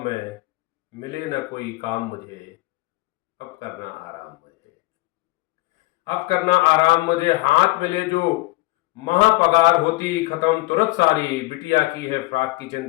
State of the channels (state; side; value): quieter; right; 20.3 dB